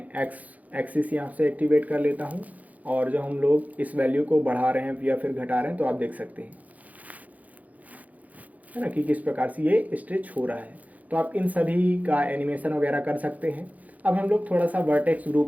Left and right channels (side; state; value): left; late; 0.076 ms